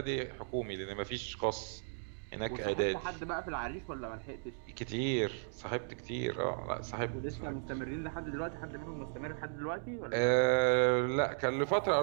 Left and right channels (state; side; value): silent; left; digital silence